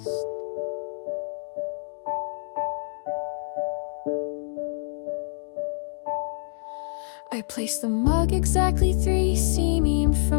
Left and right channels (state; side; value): silent; right; digital silence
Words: I placed the mug exactly 3 cm